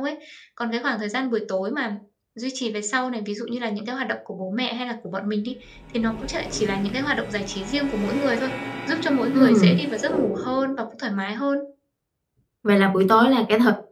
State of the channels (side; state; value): both; identical; correlation 1.00